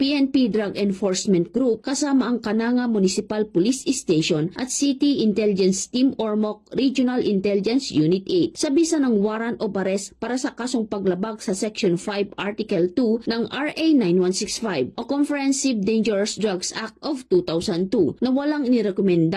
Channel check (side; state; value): both; identical; correlation 1.00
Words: Drug Enforcement Group kasama ang Cananga Municipal Police Station at City Intelligence Team Ormoc Regional Intelligence Unit 8 sa bisa ng warrant of arrest para sa kasong paglabag sa Section 5 Article 2 ng RA 9165 o Comprehensive Dangerous Drugs Act of 2002 na walang